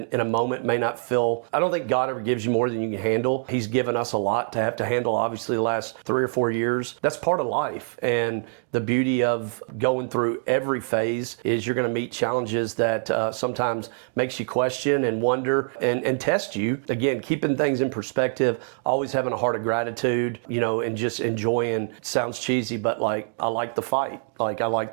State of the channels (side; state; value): left; silent; 62 dB below the other